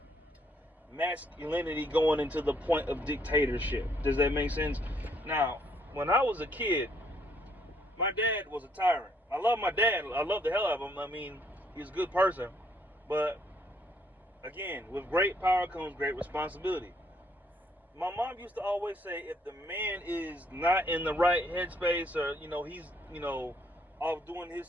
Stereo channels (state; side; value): normal; both; correlation 0.69